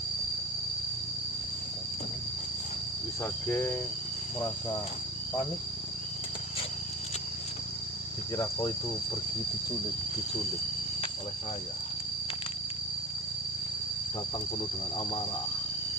Wisage merasa panik. Dikira kau itu pergi diculik oleh saya. Datang penuh dengan amarah.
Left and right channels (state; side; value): normal; both; correlation 0.37